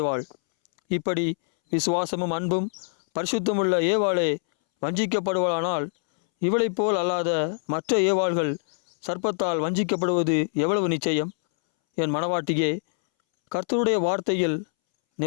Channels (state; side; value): silent; right; 62 dB below the other